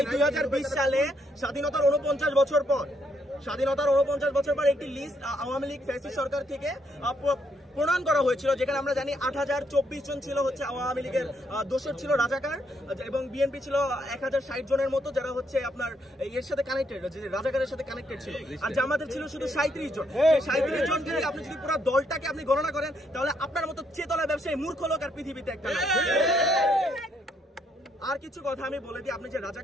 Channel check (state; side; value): normal; both; correlation 0.73